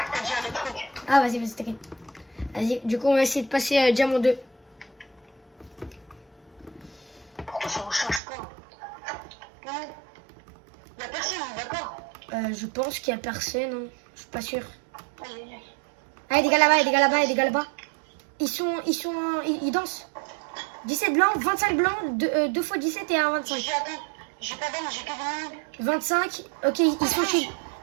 t'as dit un truc. Ah vas-y, t'inquiète. Vas-y, du coup on va essayer de passer Diamant 2. Pourquoi ça ne change pas? Non. Y'a personne, d'accord? Je pense qu'il y a personne, hein. Je suis pas sûr. Aïe aïe aïe. Ah, il y a des gars là-bas, il y a des gars là-bas, il y a des gars là-bas. Ils dansent. 17 blancs, 25 blancs, 2 fois 17 et 1 25. J'ai pas d'armes, j'ai que 20 000. 25, ok, ils sont shieldés.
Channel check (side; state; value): left; drops out; at 8.2 s